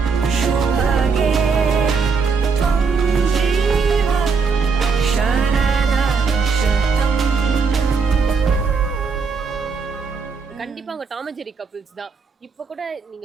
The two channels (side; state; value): left; quieter; 5.2 dB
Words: शुभगे त्वं जीव शरद शतम् கண்டிப்பா அவங்க டாம் அண்ட் ஜெரி கப்பிள்ஸ் தான். இப்போ கூட நீங்க